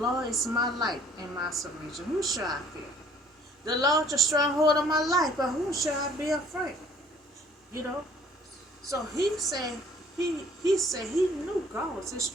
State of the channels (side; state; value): both; normal; correlation 0.56